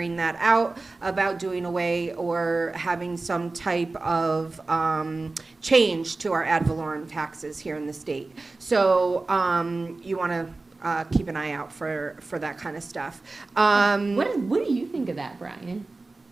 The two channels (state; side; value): quieter; left; 3.4 dB